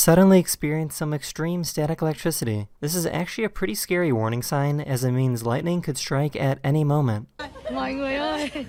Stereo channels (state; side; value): identical; both; correlation 1.00